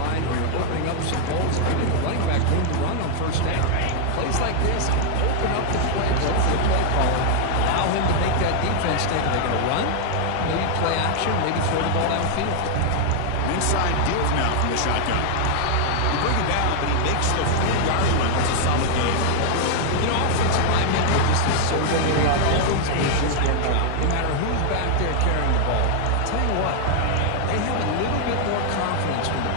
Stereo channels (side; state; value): both; different; correlation 0.00